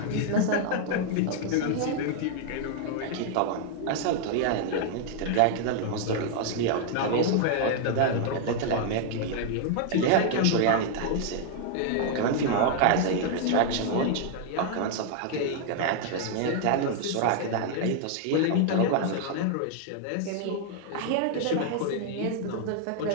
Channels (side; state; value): both; different; correlation 0.00